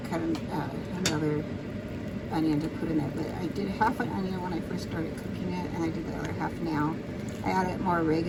cut another onion to put in it, but I did half an onion when I first started cooking it, and I did the other half now. I added more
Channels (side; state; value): both; identical; correlation 1.00